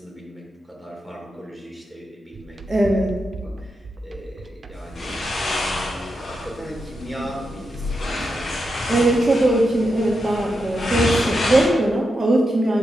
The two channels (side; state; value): both; normal; correlation 0.86